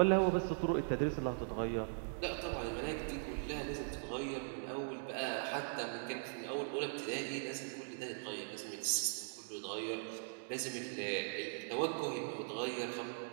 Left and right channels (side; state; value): left; silent; digital silence